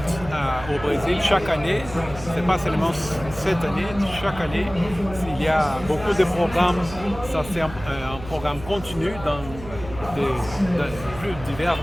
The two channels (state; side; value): noise; right; hum, 13 dB below the sound